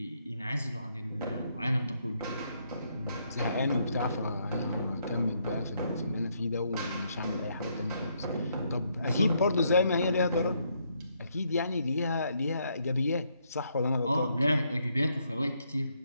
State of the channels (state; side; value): inverted; both; correlation -0.74